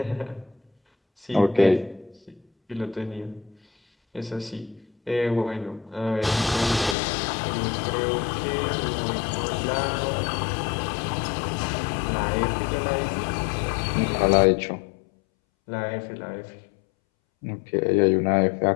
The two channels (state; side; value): drops out; right; at 7.0 s